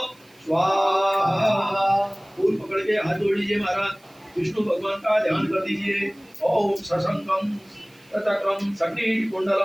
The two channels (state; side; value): noise; right; hiss, 30 dB below the sound